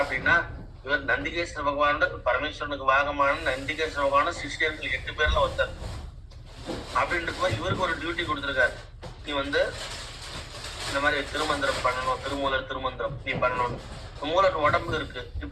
அப்படின்னா இவர் நந்திகேஸ்வர பகவானோட பரமேஸ்வரனுக்கு வாகமான நந்திகேஸ்வர பகவான சிஷ்யர்கள் 8 பேர்ல ஒருத்தர் அப்படின்ட்டு இவருக்கு ஒரு டியூட்டி கொடுத்துருக்காரு. நீ வந்து இந்த மாதிரி திருமந்திரம் பண்ணணும், திருமூலர் திருமந்திரம் நீ பண்ணணும். மூலர் உடம்பு இருக்கு.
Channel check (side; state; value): both; identical; correlation 1.00